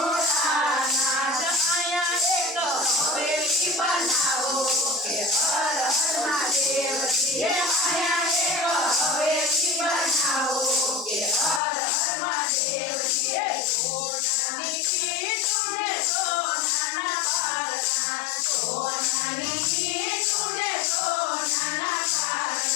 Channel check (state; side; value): drops out; right; at 11.6 s